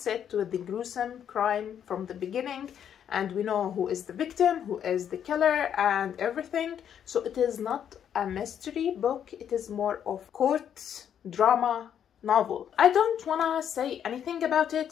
it with the gruesome crime from the beginning, and we know who is the victim, who is the killer, and everything. So it is not a mystery book, it is more of court drama novel. I don't wanna say anything about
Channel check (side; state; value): right; quieter; 9.0 dB